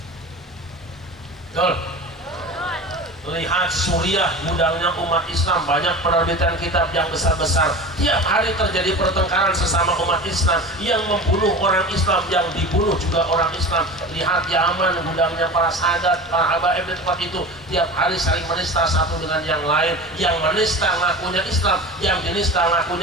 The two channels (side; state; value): both; normal; correlation 0.33